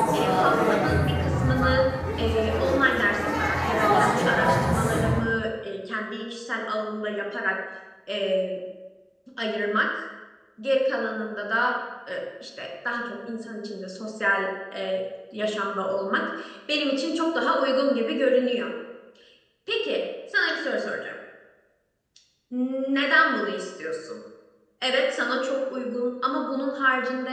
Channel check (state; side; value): identical; both; correlation 1.00